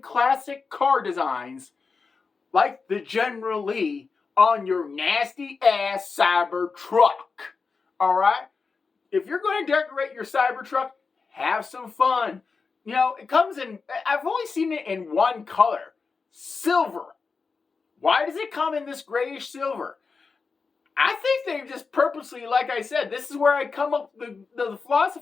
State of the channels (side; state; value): right; quieter; 4.7 dB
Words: car designs like the General Lee on your nasty ass cyber truck. All right? If you're going to decorate your cyber truck, have some fun. You know, it comes in, I've only seen it in one color, silver. Why does it come in this grayish silver? I think they just purposely, like I said, this is where I come up with the